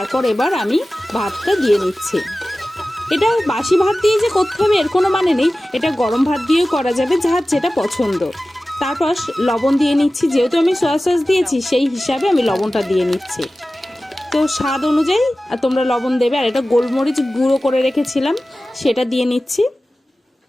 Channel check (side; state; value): both; normal; correlation 0.96